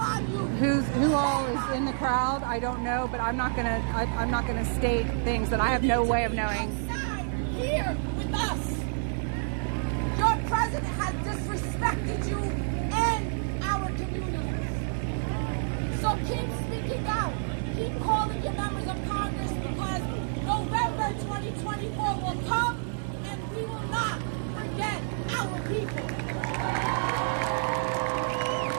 on you. who all is in the crowd. I don't know, but I'm not gonna state things that I have no way of knowing. Outside here with us. Your president has disrespected you and our communities. So keep speaking out. Keep calling your members of Congress, because November 2024 will come and we will not forget our people.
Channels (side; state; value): left; silent; 59 dB below the other